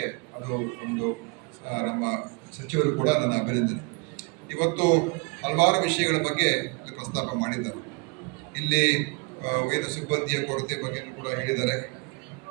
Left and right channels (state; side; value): quieter; left; 30.7 dB